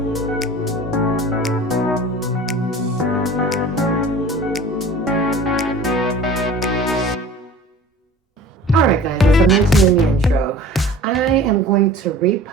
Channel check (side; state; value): both; normal; correlation 0.43